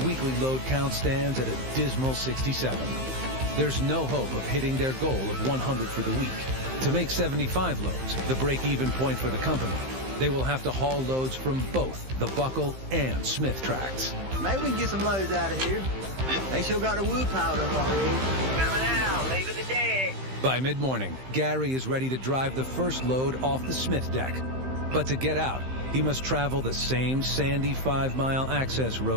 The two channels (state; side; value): late; left; 15 ms